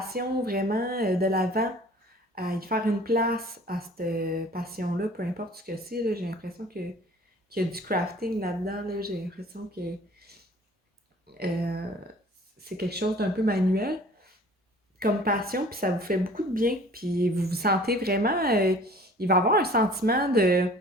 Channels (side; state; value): both; normal; correlation 0.49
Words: vraiment de l'avant, à y faire une place à cette passion-là, peu importe ce que c'est. Là, j'ai l'impression qu'il y a du crafting là-dedans. Là, j'ai l'impression que euh, c'est quelque chose d'un peu manuel comme passion, puis ça vous fait beaucoup de bien, puis vous vous sentez vraiment, il va y avoir un sentiment